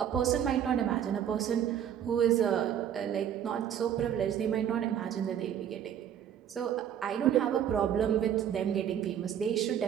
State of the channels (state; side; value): quieter; left; 9.5 dB